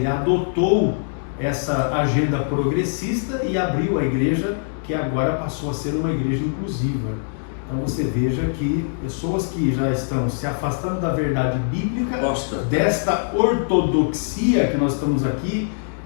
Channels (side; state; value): right; silent; digital silence